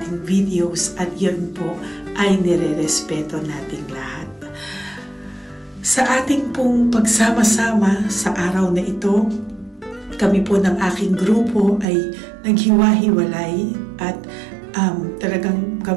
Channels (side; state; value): left; drops out; at 11.9 s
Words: videos, at yun po ay nire-respeto nating lahat. Sa ating pong pagsama-sama sa araw na ito, kami po ng aking grupo ay naghiwa-hiwalay at talagang